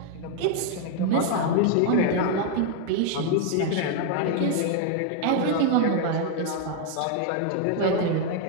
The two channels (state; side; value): different; both; correlation 0.00